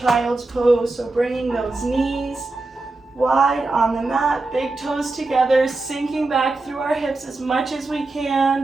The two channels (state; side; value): quieter; left; 3.2 dB